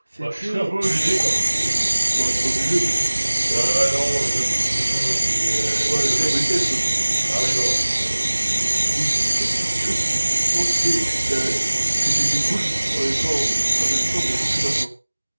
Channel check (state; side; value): inverted; both; correlation -1.00